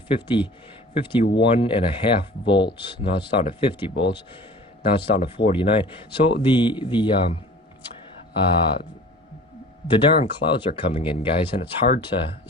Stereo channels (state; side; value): normal; both; correlation 0.43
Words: 51.5 volts. Now it's down to 50 volts. Now it's down to 49. So the darn clouds are coming in, guys, and it's hard to,